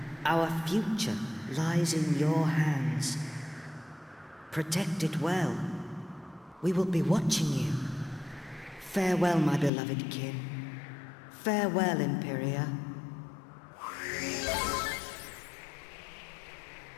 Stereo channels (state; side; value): drops out; right; at 9.7 s